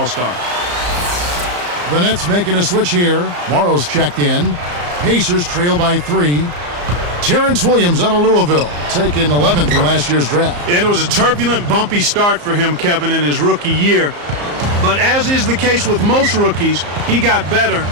The Nets making a switch here. Morrow's checked in. Pacers trail by 3. Terrence Williams out of Louisville, taken 11th in last year's draft. And it was a turbulent, bumpy start for him, Kevin, in his rookie year. But as is the case with most rookies, he got better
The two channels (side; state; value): left; late; 34 ms